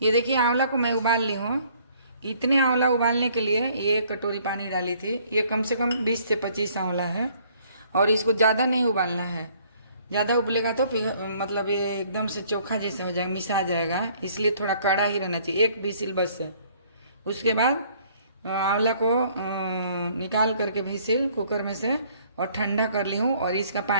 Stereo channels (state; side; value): inverted; both; correlation -0.60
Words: ये देखिए आंवला को मैं उबाल ली हूँ। इतने आंवला उबालने के लिए ये कटोरी पानी डाली थी। ये कम से कम 20 से 25 आंवला है। और इसको ज़्यादा नहीं उबालना है, ज़्यादा उबलेगा तो मतलब ये एकदम से चोखा जैसा हो जाएगा, मिसा जाएगा। इसलिए थोड़ा कड़ा ही रहना चाहिए, एक विसिल बस है। उसके बाद आंवला को निकाल करके विसिल कुकर में से और ठंडा कर ली हूँ और इसका